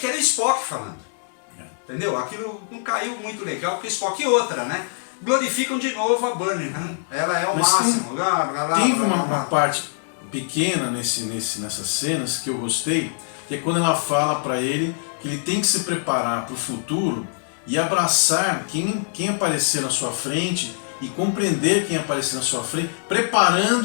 era o Spock falando, entendeu? Aquilo não caiu muito legal, porque Spock e outra, né? Glorificam de novo a Burnham, né? Ela é o mas máximo. Teve uma parte pequena nessas cenas que eu gostei, que é quando ela fala pra ele que ele tem que se preparar pro futuro e abraçar quem aparecer na sua frente e compreender quem aparecer na sua frente,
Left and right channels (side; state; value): right; silent; digital silence